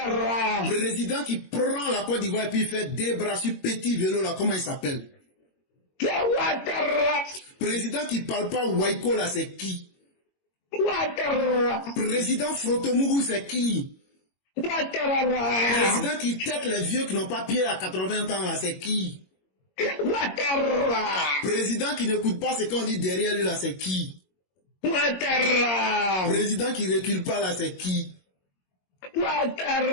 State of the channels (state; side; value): late; right; 22 ms